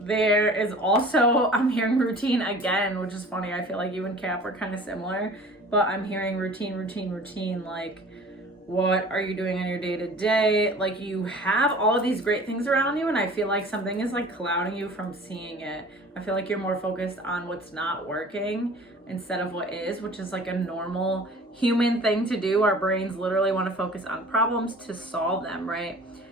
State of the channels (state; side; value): normal; both; correlation 0.45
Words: is also, I'm hearing routine again, which is funny. I feel like you and Cap are kind of similar, but I'm hearing routine. Like, what are you doing on your day-to-day? Like, you have all of these great things around you, and I feel like something is like clouding you from seeing it. I feel like you're more focused on what's not working instead of what is, which is like a normal human thing to do. Our brains literally want to focus on problems to solve them, right?